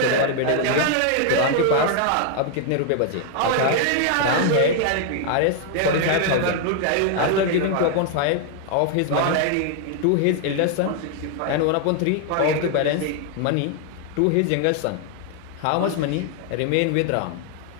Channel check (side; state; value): both; different; correlation 0.00